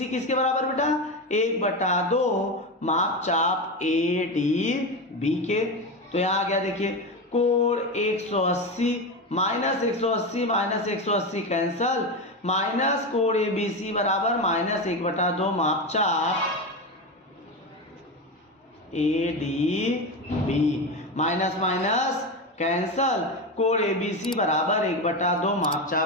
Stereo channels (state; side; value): normal; both; correlation 0.18